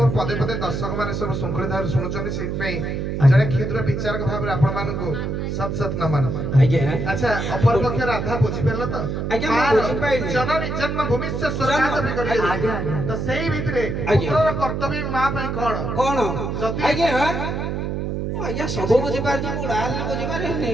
ପଦେ ପଦେ ଦର୍ଶକ ମାନେ ସବୁ ଶୃଙ୍ଖଳିତ ଭାବରେ ଶୁଣୁଛନ୍ତି ସେଇଥିପାଇଁ ଜଣେ କ୍ଷୁଦ୍ର ବିଚାରକ ଭାବରେ ଆପଣ ମାନଙ୍କୁ ସତ ସତ ନମନ ଆଜ୍ଞା ଆଚ୍ଛା ଅପରପକ୍ଷ ରାଧା ବୁଝିପାରିଲ ତ ଆଜ୍ଞା ମୁଁ ବୁଝିପାରିଲି ଜନନୀ ଜନ୍ମ ଭୂମିଶ୍ଚ ସ୍ୱର୍ଗାଦପି କରିବେ ଆଜ୍ଞା ଆଜ୍ଞା ତ ସେଇ ଭିତରେ ଆଜ୍ଞା। ପୁତ୍ରର କର୍ତ୍ତବ୍ୟ ମା ପାଇଁ କଣ କଣ ଯଦି- ଆଜ୍ଞା ଆଜ୍ଞା ସବୁ ବୁଝିପାରୁଛି ମୁଁ ଡାଲି ବୁଝିପାରିନି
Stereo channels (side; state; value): right; noise; hum, 2 dB below the sound